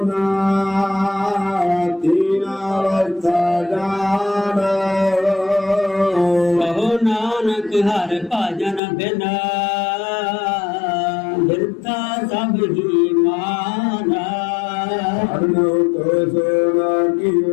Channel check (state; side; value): drops out; right; at 8.8 s